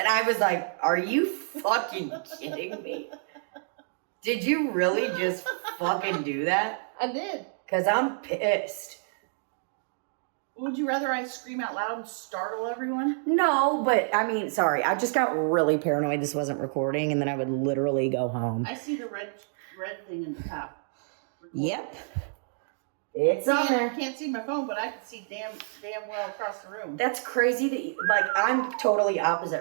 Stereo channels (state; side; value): silent; left; digital silence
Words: I was like, are you fucking kidding me? Did you really just fucking do that? I did. Because I'm pissed. Would you rather I scream out loud and startle everyone? No, but I mean, sorry. I just got really paranoid this wasn't recording, and then I would literally go home. I see the red thing in the top. Yep. It's on there. I can't see my phone, but I can see damn well across the room. That's crazy that like, I'm totally